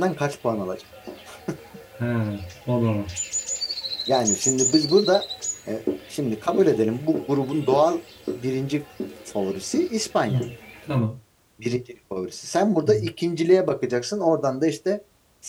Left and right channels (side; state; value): both; identical; correlation 1.00